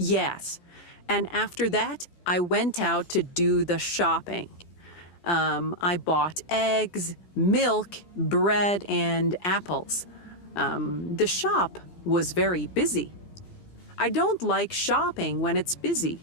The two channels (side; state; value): right; late; 16 ms